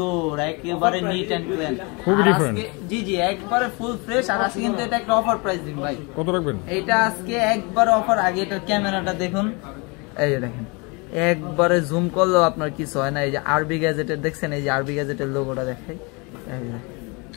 একেবারে নিট এন্ড ক্লিন, খুবই ডিফারেন্ট। জি জি একবারে ফুল ফ্রেশ। আর আজকে কিন্তু এটা একটা অফার প্রাইস দিন ভাই। কত রাখবেন? এটা আজকে একবার অফার। আগে এটার ক্যামেরাটা দেখুন, এই যে দেখেন একবারে জুম করলেও আপনার কিছু হয় না। এই যে আরবি গ্যাজেটের দেখছেন, এই যে আরবি গ্যাজেটের লোগোটা দেখাই,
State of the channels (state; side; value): quieter; right; 29.5 dB